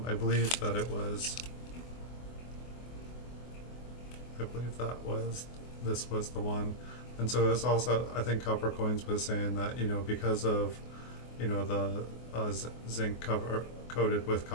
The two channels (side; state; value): right; late; 24 ms